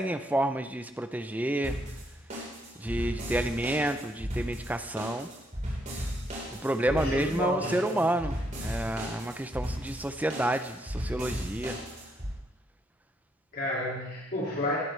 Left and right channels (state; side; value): normal; both; correlation 0.73